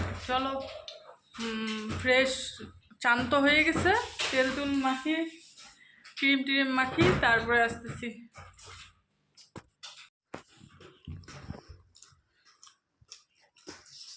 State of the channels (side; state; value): both; identical; correlation 1.00